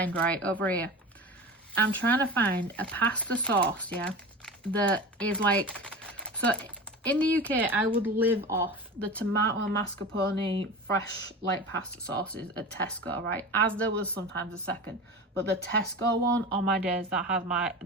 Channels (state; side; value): normal; both; correlation 0.31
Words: right over here, I'm trying to find a pasta sauce, yeah, that is like, so in the UK I would live off the tomato mascarpone fresh like pasta sauces at Tesco, right, as there was sometimes a second, but the Tesco one, on my days, that has